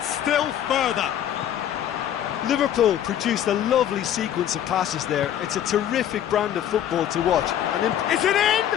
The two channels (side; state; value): right; quieter; 10.6 dB